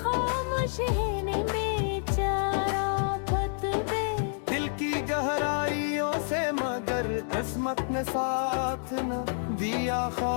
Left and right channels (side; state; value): right; silent; digital silence